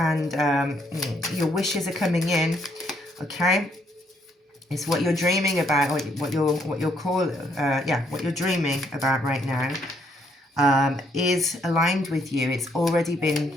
your wishes are coming in. Okay, it's what you're dreaming about, what you're dreaming about right now is aligned with you. It's already been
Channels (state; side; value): normal; both; correlation 0.71